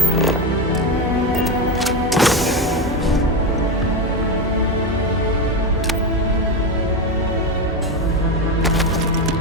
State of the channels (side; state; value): both; normal; correlation 0.14